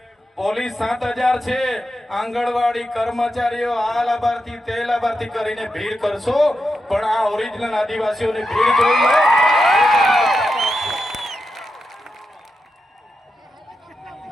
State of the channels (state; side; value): normal; both; correlation 0.87